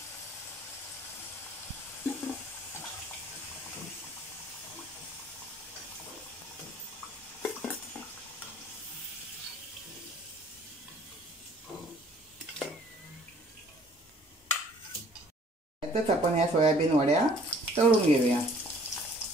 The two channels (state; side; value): normal; both; correlation 0.56